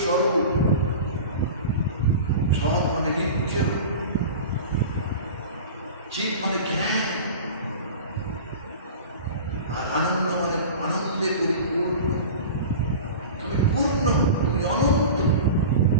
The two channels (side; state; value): both; inverted; correlation -0.34